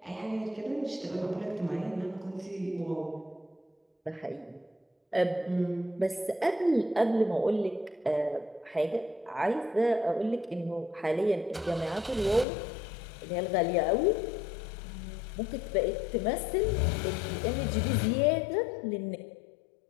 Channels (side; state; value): right; drops out; at 12.5 s